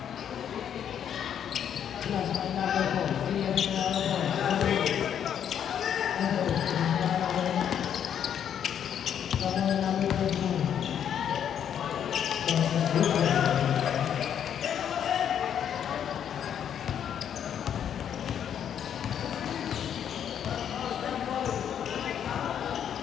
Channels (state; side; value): quieter; right; 9.0 dB